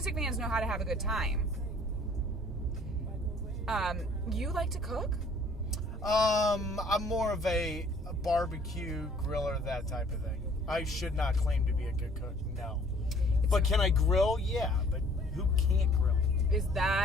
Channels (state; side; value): normal; both; correlation 0.56